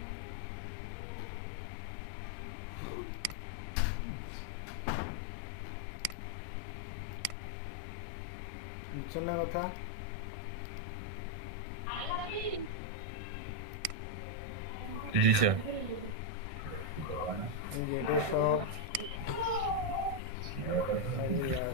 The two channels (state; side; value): late; left; 1.6 ms